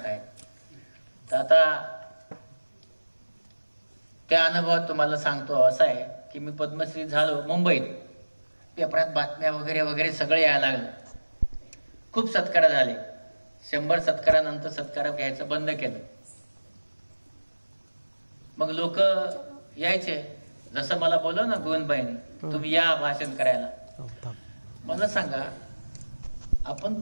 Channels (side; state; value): both; inverted; correlation -1.00